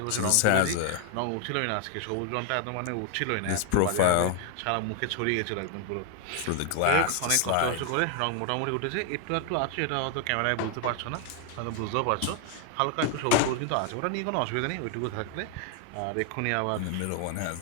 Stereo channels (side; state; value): both; different; correlation 0.00